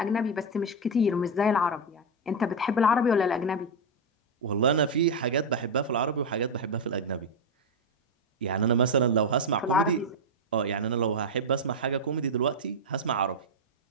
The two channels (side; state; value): both; normal; correlation 0.04